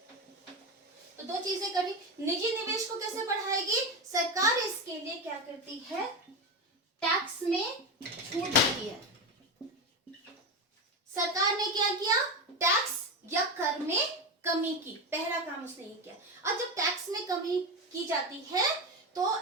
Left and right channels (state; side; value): normal; both; correlation 0.17